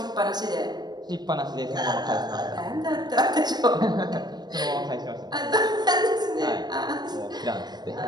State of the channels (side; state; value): left; late; 0.20 ms